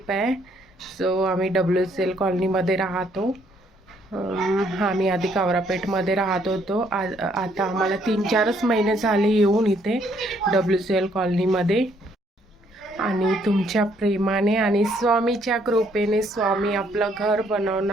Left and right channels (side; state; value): both; normal; correlation 0.68